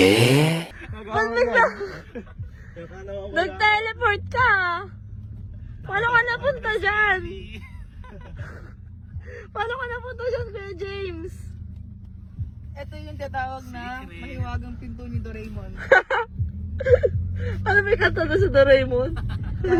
Ba't bigla? Nag-teleport ka? Paano ka napunta dyan? Paano ka napunta dyan, Kuya James? Ito yung tatawag na mahiwagang pinto ni Doraemon. Ano may kanta na sa Doraemon?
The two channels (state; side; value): identical; both; correlation 1.00